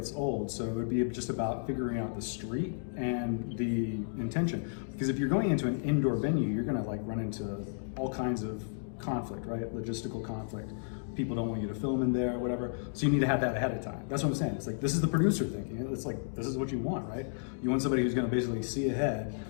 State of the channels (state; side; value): silent; right; digital silence